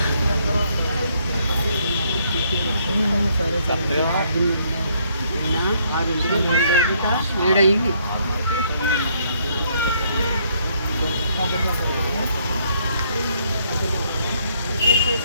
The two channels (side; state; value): both; inverted; correlation -0.69